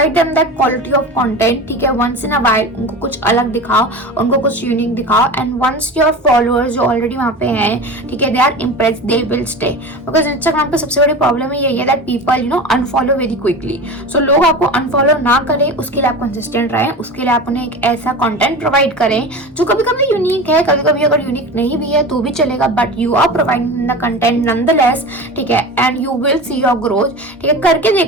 them that quality of content, ठीक है। वंस इन अ व्हाइल उनको कुछ अलग दिखाओ, उनको कुछ यूनिक दिखाओ, एंड वंस योर फॉलोअर्स जो ऑलरेडी वहां पे हैं, ठीक है, they are impressed, they will stay. Because Instagram पे सबसे बड़ी प्रॉब्लम यही है that people unfollow very quickly. So लोग आपको अनफॉलो ना करें, उसके लिए आप कंसिस्टेंट रहें, उसके लिए आप उन्हें एक ऐसा कंटेंट प्रोवाइड करें जो कभी कभी यूनिक है, कभी कभी अगर यूनिक नहीं भी है तो भी चलेगा, but you are providing the content nonetheless, ठीक है, and you will see your growth, ठीक है। करके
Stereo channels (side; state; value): both; normal; correlation 0.30